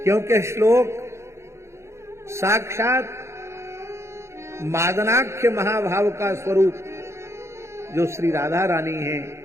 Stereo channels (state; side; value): late; left; 0.13 ms